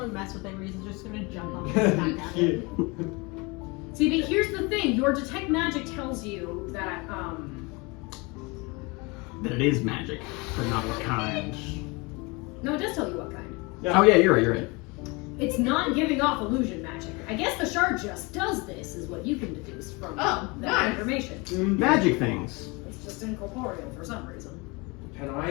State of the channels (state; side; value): quieter; right; 27.0 dB